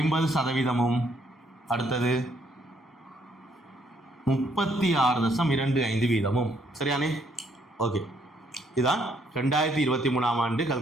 அடுத்தது 36.25 வீதமும். சரியானே ஓகே இதுதான் 2023ஆம் ஆண்டு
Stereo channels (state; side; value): normal; both; correlation 0.69